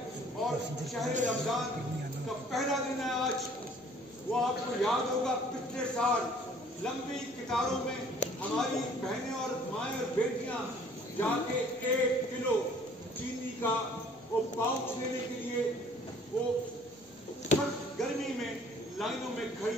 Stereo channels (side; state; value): both; normal; correlation 0.56